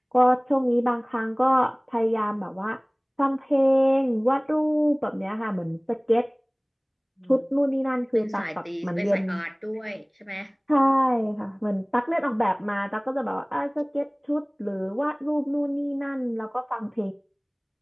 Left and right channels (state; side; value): identical; both; correlation 1.00